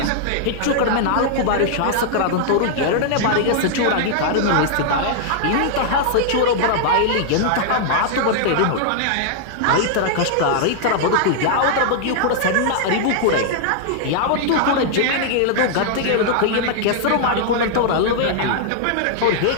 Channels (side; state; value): both; different; correlation -0.01